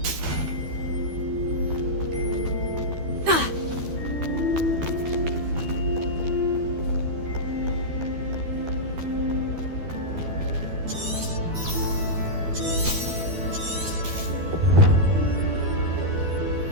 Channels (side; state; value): left; late; 12 ms